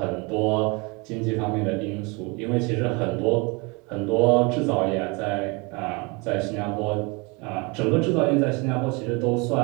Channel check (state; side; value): quieter; left; 28.7 dB